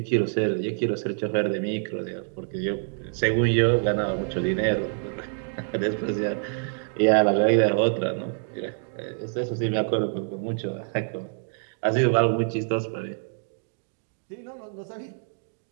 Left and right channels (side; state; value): left; silent; digital silence